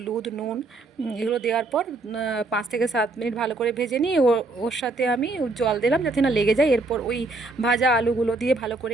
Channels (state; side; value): quieter; left; 3.3 dB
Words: নুন, এগুলো দেওয়ার পর 5 থেকে 7 মিনিট ভালো করে ভেজে নিয়ে ওর সাথে আমি জল দিলাম যাতে না লেগে যায়। এরপর ওই ভাজা আলুগুলো দিয়ে ভালো করে